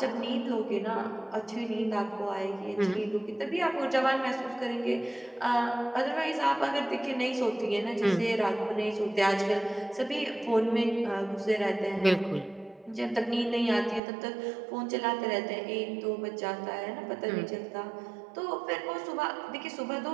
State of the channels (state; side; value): drops out; left; at 14.0 s